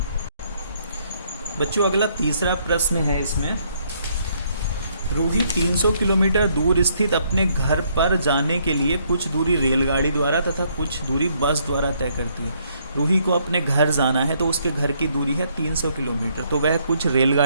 बच्चों अगला तीसरा प्रश्न है इसमें, रूही 300 किलोमीटर दूर स्थित अपने घर पर जाने के लिए कुछ दूरी रेलगाड़ी द्वारा तथा कुछ दूरी बस द्वारा तय करती है। रूही को अपने घर जाना है तो उसके घर की दूरी है 300 किलोमीटर, तो वह कुछ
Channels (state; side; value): inverted; both; correlation -0.69